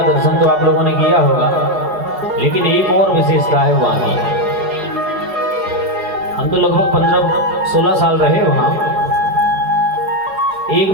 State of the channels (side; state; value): left; late; 4.8 ms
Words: दर्शन तो आप लोगों ने किया होगा, लेकिन एक और विशेषता है वहाँ की। हम तो लगभग 15-16 साल रहे वहाँ। एक